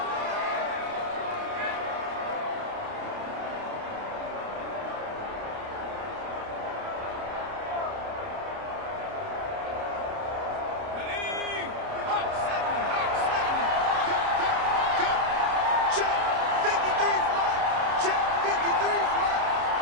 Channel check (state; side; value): late; left; 29 ms